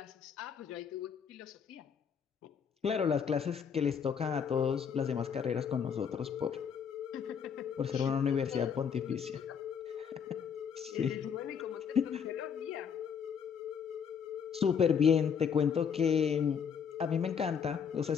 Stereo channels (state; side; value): quieter; right; 7.1 dB